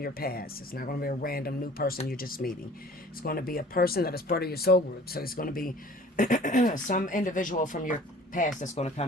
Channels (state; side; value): normal; both; correlation 0.48